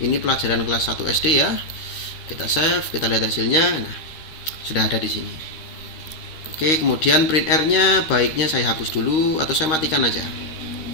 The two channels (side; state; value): right; late; 13 ms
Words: Ini pelajaran kelas 1 SD ya. Kita save, kita lihat hasilnya. Nah, sudah ada di sini. Oke, kemudian print r-nya baiknya saya hapus dulu atau saya matikan aja.